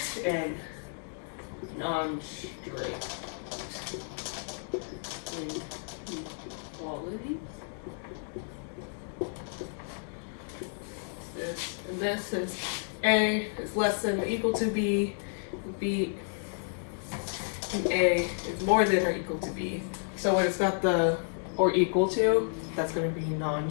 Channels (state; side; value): silent; right; 57 dB below the other